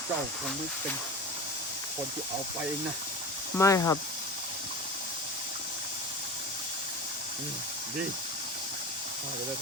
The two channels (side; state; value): both; normal; correlation 0.30